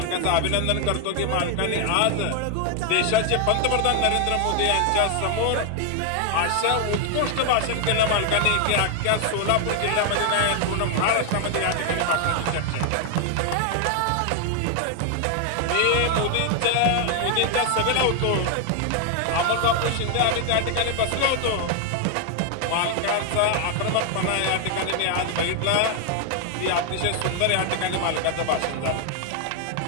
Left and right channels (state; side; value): different; both; correlation 0.00